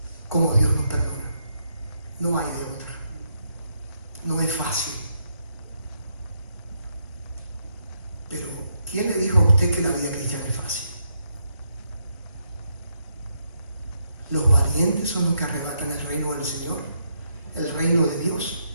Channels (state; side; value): inverted; both; correlation -0.78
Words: como Dios nos perdona. No hay de otra. No es fácil. Pero ¿quién le dijo a usted que la vida cristiana es fácil? Los valientes son los que arrebatan el reino del Señor, el reino de Dios.